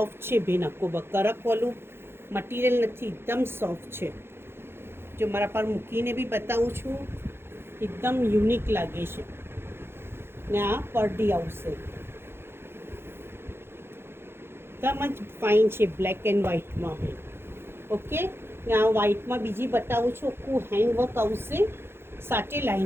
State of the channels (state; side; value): late; left; 0.11 ms